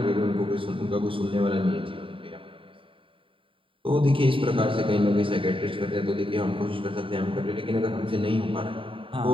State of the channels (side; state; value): left; late; 0.25 ms